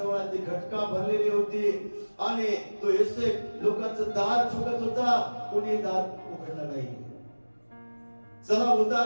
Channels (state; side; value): inverted; both; correlation -1.00